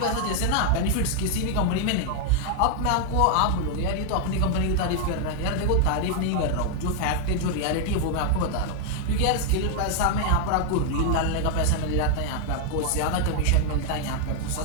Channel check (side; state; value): both; different; correlation 0.00